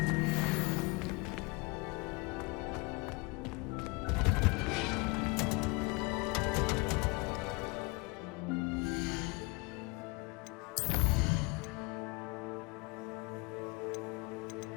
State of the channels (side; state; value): right; quieter; 26.5 dB